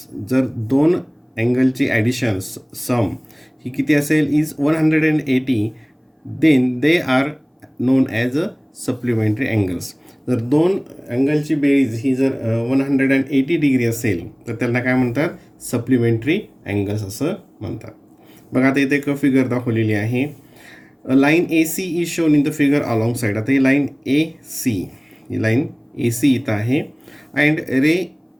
जर दोन अँगलची ॲडिशन सम ही किती असेल is 180, then they are known as a supplementary angles. जर दोन अँगलची बेरीज ही जर 180 डिग्री असेल तर त्यांना काय म्हणतात, सप्लिमेंटरी अँगल्स असं म्हणतात. बघा आता इथे एक फिगर दाखवलेली आहे. Line A C is shown in the figure along side. आता ही लाईन ए सी, ही लाईन ए सी इथं आहे and ray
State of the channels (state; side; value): identical; both; correlation 1.00